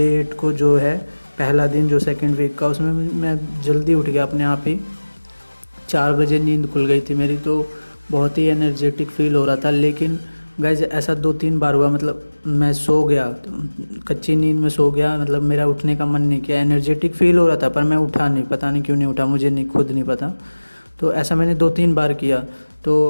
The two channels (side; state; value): both; inverted; correlation -1.00